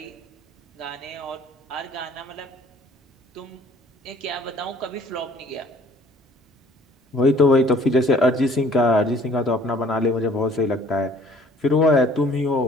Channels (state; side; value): normal; both; correlation 0.55